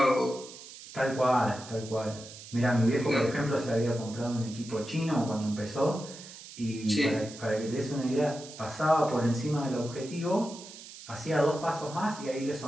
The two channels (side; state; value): right; noise; hiss, 15 dB below the sound